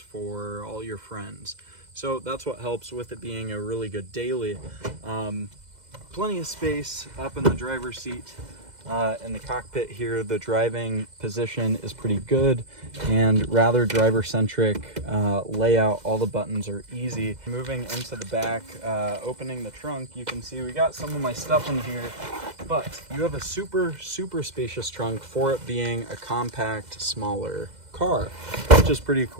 all your friends. So that's what helps with it being a really good daily. Plenty of space up in the driver's seat. In the cockpit here, the driving position is pretty good and rather driver-centric layout. All the buttons are easy. Moving into the back, opening the trunk, you can see we got some of my stuff in here, but you have a super spacious trunk for it being a compact, smaller car, which is pretty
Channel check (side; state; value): left; late; 2.0 ms